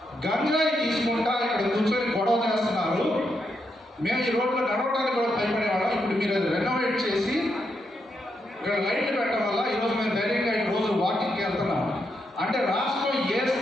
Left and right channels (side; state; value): both; normal; correlation 0.81